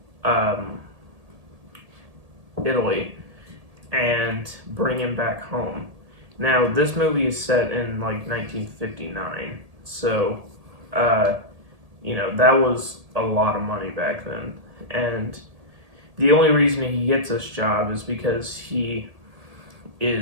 Italy and bring him back home. Now, this movie is set in like 1959, so that was a lot of money back then. And the only reason he gets this job is because he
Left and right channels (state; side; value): late; left; 1.8 ms